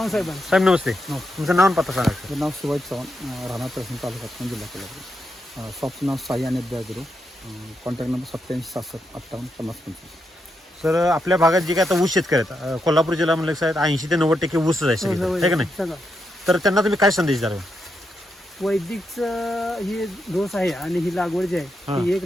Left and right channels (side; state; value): both; normal; correlation 0.83